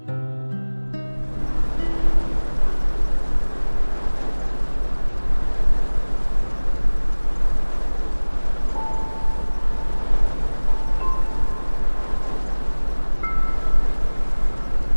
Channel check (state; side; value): inverted; both; correlation -1.00